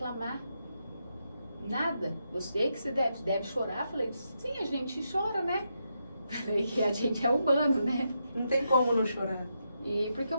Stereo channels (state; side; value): inverted; both; correlation -0.83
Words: Nada. Eu sei que você deve chorar. Falei, sim, a gente chora, né? Falei que a gente é humano, né? Não tem como não chorar. E porque eu